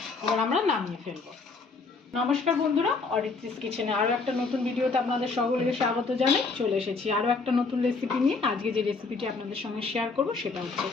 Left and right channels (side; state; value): right; quieter; 4.2 dB